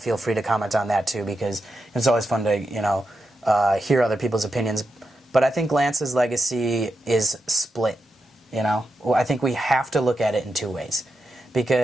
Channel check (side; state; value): both; normal; correlation 0.87